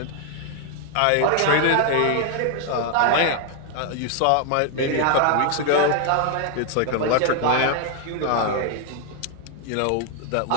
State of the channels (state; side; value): different; both; correlation 0.00